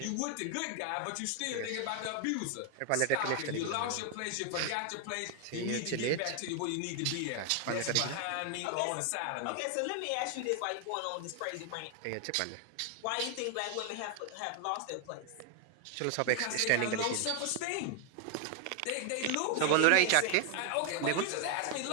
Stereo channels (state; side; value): different; both; correlation 0.00